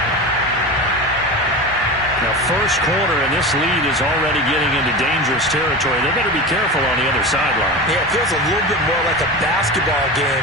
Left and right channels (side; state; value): both; normal; correlation 0.27